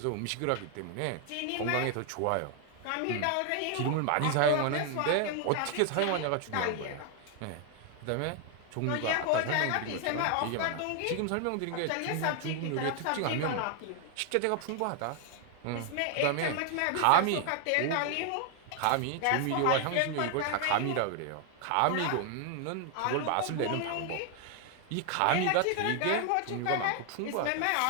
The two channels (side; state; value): both; different; correlation 0.00